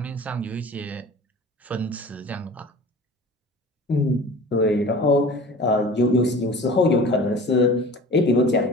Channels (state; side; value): normal; both; correlation 0.41